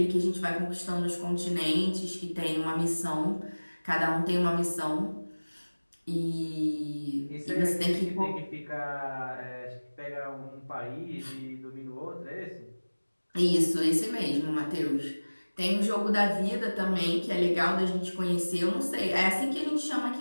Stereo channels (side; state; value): both; inverted; correlation -1.00